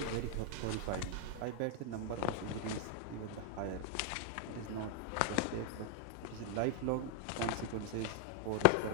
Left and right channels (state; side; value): different; both; correlation 0.00